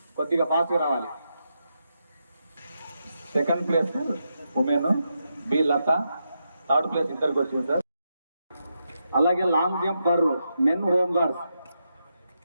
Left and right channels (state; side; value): inverted; both; correlation -0.84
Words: కొద్దిగా ఫాస్ట్గా రావాలి. 2nd place women B Latha, 3rd place ఇద్దరికి వచ్చింది సార్. అలాగే long jump for men home guards